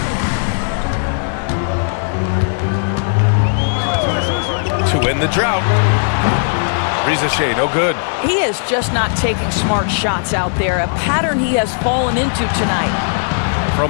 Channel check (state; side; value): silent; right; digital silence